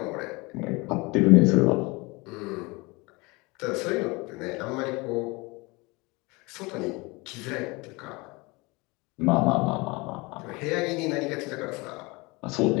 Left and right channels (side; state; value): right; quieter; 25.4 dB